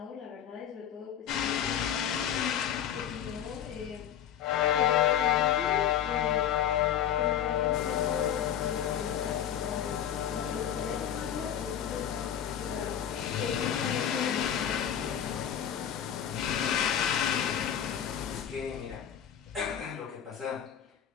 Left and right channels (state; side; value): quieter; right; 9.6 dB